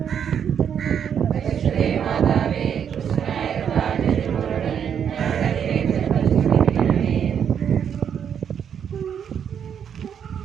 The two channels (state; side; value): quieter; left; 8.2 dB